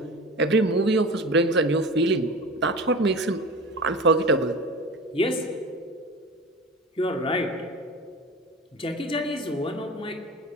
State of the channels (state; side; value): normal; both; correlation 0.33